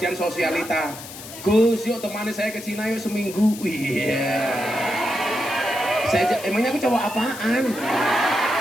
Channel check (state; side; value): noise; left; hiss, 13 dB below the sound